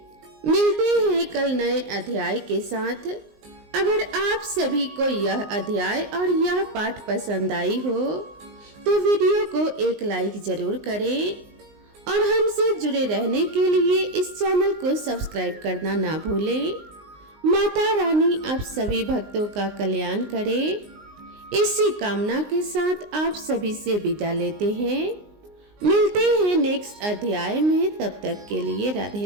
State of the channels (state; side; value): late; left; 19 ms